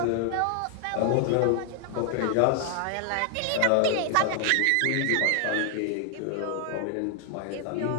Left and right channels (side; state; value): both; different; correlation 0.00